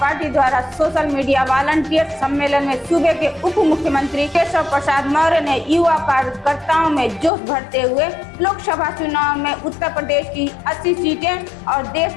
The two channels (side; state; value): right; drops out; at 7.3 s